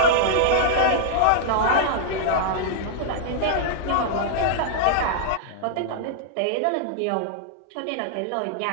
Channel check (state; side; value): different; both; correlation -0.01